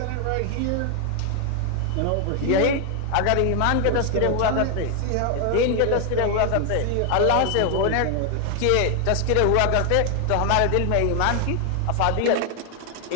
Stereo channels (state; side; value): different; both; correlation 0.00